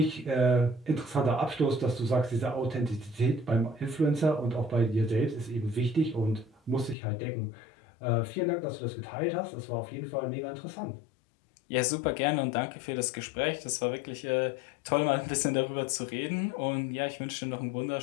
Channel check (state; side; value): drops out; right; at 7.0 s